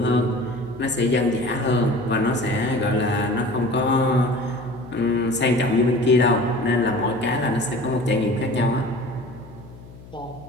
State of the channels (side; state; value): left; noise; hum, 19 dB below the sound